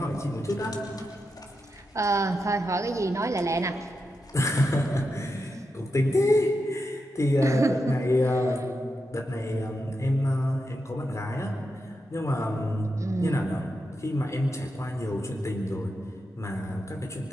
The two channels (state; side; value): normal; both; correlation 0.87